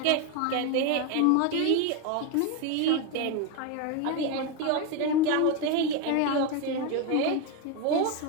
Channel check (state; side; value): different; both; correlation 0.02